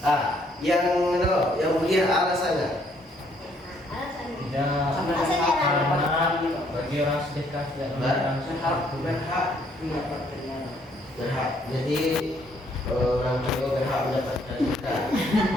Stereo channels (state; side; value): normal; both; correlation 0.67